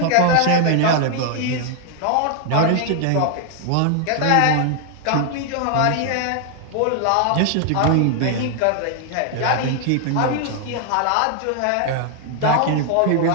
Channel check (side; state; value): both; different; correlation 0.00